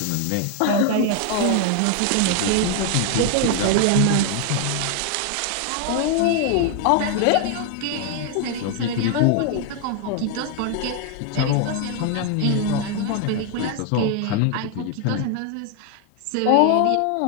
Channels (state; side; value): different; both; correlation 0.00